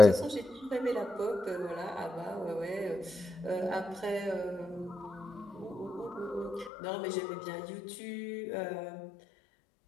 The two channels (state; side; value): drops out; right; at 6.7 s